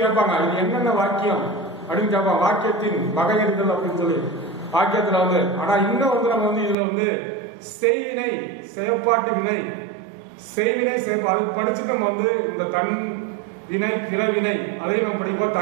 கேட்பாங்க, இது என்னென்ன வாக்கியம் அப்படின்னு கேட்பாங்க. வாக்கியத்தின் வகையறிதல் அப்படின்னு சொல்லி வாக்கியத்துல வந்து. ஆனா இன்னும் வந்து நம்ம வந்து இதுல வந்து செய்வினை, செயற்பாட்டு வினை, செய்வினை அதுக்கு படிச்சுட்டு நம்ம வந்து இந்த தன் வினை, பிறவினை அதையும் நம்ம படிப்போம்.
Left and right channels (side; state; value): left; drops out; at 6.8 s